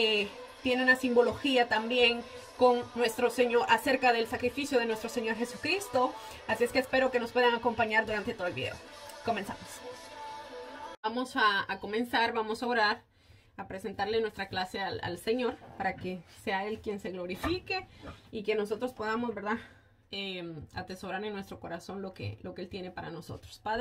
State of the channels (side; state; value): both; identical; correlation 1.00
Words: tiene una simbología también con nuestro Señor, acerca del sacrificio de nuestro Señor Jesucristo. Así es que espero que nos puedan acompañar durante todo el video. Comenzamos. Vamos a comenzar, vamos a orar, a presentarle nuestra clase al Señor para que sea Él quien se glorifique y que nosotros podamos, ¿verdad?, atesorar en nuestro corazón lo que Él tiene para nosotros.